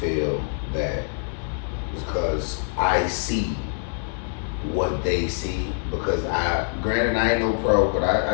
that because I see what they see, because granted I ain't no pro, but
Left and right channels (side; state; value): right; silent; digital silence